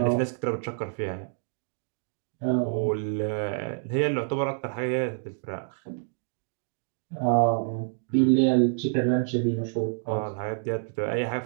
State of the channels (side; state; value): left; silent; digital silence